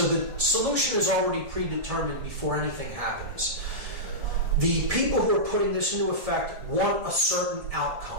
the solution is already predetermined before anything happens. The people who are putting this into effect want a certain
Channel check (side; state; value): left; late; 1.7 ms